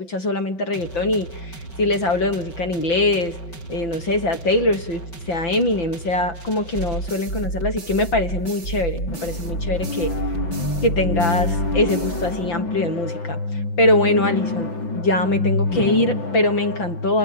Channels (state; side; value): late; right; 5.2 ms